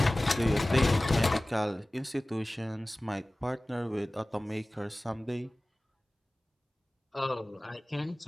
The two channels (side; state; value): both; normal; correlation 0.98